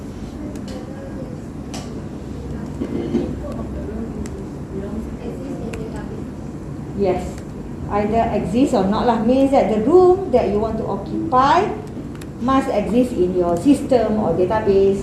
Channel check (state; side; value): identical; both; correlation 1.00